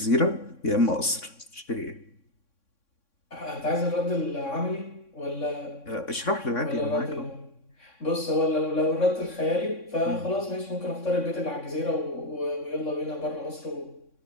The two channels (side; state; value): right; late; 3.6 ms